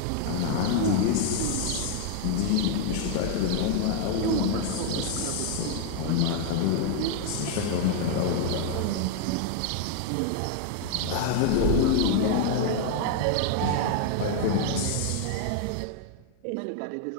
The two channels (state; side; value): different; both; correlation 0.00